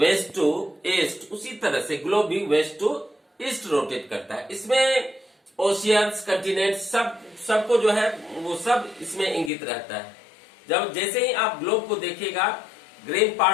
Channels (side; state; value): right; drops out; at 9.5 s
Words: टू ईस्ट, उसी तरह से ग्लोब भी वेस्ट टू ईस्ट रोटेट करता है। इसमें ओशियंस, कंटिनेंट सबको जो है वो सब इसमें इंगित रहता है। जब जैसे ही आप ग्लोब को देखिएगा, ग्रीन